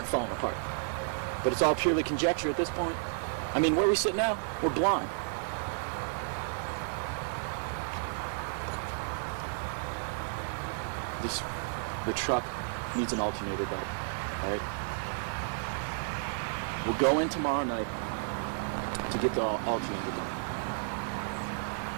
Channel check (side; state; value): left; silent; 56 dB below the other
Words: falling apart. But it's all purely conjecture at this point. I mean, where we sit now, we're blind. The truck needs an alternator belt, all right? We'll go in tomorrow night to get the alternator done.